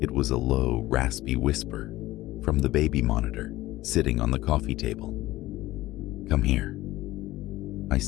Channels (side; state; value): right; quieter; 17.0 dB